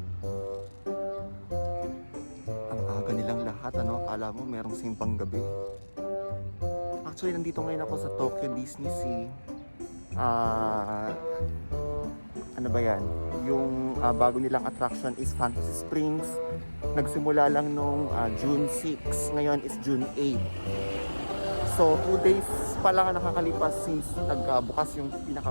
Nilang lahat, akala mo merong simpang gabi. Actually, nandito ngayon ako sa Tokyo Disney Sea. Ano ba yan? Yung bago nilang attraction is Fantasy Springs. Nagsimula lang nung June 6. Ngayon is June 8. So, 2 days pa lang nakakalipas since nagbukas yung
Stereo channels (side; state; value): both; inverted; correlation -1.00